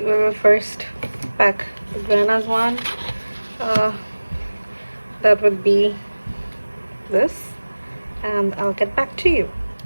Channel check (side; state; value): both; inverted; correlation -1.00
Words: first pack the Grana's one. That would be this, and I'll get back to you.